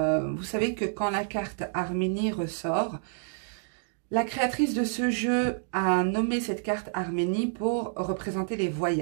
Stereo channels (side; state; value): left; silent; digital silence